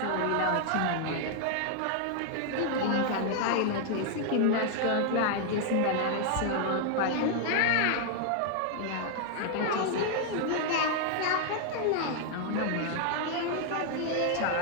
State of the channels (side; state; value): both; different; correlation 0.00